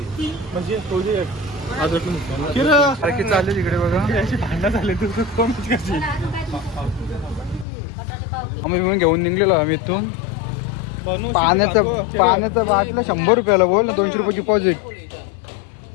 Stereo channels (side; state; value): right; drops out; at 7.7 s